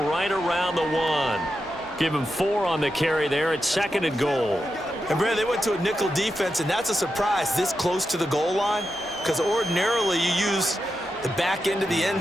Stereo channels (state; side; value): normal; both; correlation 0.88